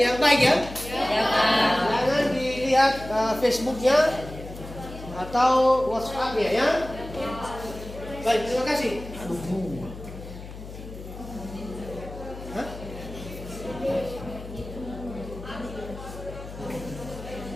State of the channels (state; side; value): noise; left; hum, 12 dB below the sound